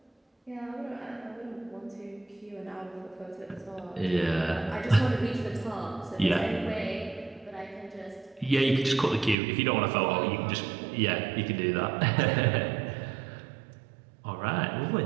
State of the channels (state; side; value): drops out; left; at 9.3 s